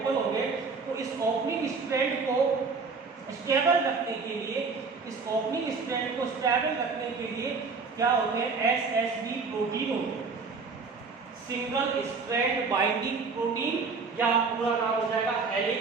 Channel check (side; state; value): left; quieter; 4.7 dB